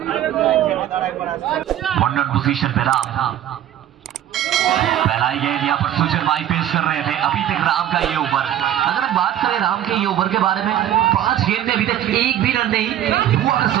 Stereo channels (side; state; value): left; quieter; 11.7 dB